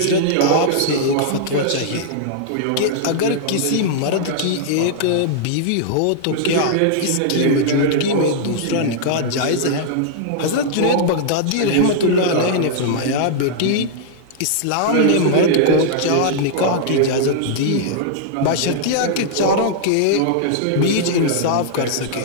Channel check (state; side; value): different; both; correlation -0.01